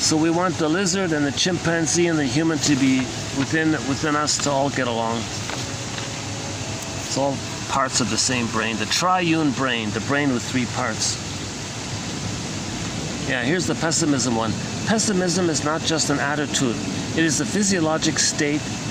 we want the lizard and the chimpanzee and the human to be within us to all get along. It's all parts of the same brain, the triune brain, the brain with three parts. Yeah, here's the pessimism one. Pessimism is not just an attitude. It is a physiologic state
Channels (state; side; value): identical; both; correlation 1.00